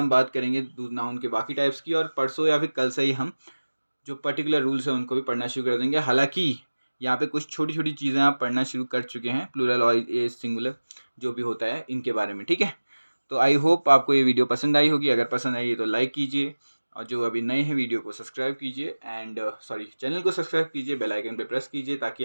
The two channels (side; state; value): both; inverted; correlation -1.00